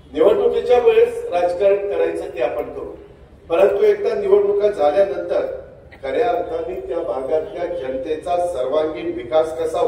निवडणुकीच्या वेळेस राजकारण करायचं ते आपण करू, परंतु एकदा निवडणुका झाल्यानंतर खऱ्या अर्थाने त्या भागातल्या जनतेचा सर्वांगीण विकास कसा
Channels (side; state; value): both; identical; correlation 1.00